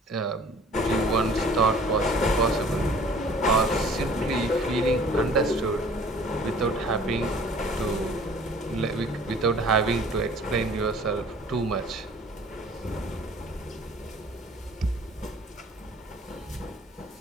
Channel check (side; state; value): both; normal; correlation 0.50